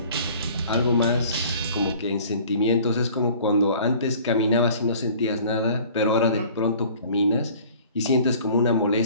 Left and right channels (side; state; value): both; inverted; correlation -0.50